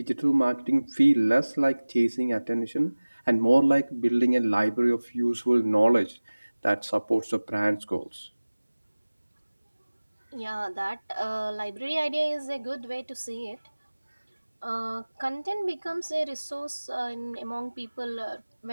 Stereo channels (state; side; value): inverted; both; correlation -1.00